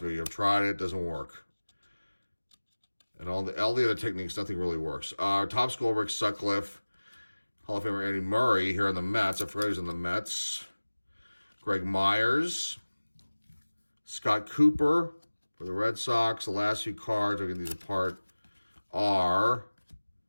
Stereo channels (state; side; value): inverted; both; correlation -1.00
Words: me, I've tried it. It doesn't work. And all the other techniques, nothing really works. Topps gold, Rick Sutcliffe. Hall of Famer Andy Murray here on the Mets. I forgot he's on the Mets. Greg Myers. Scott Cooper for the Red Sox. The last few cards, I'll get these apart, are